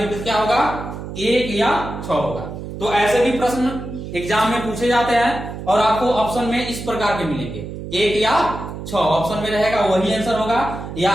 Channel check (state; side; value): noise; right; hum, 9 dB below the sound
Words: क्या होगा, 1 या 6 होगा। तो ऐसे भी प्रश्न एग्जाम में पूछे जाते हैं और आपको ऑप्शन में इस प्रकार के मिलेंगे, 1 या 6 ऑप्शन में रहेगा, वही आंसर होगा। या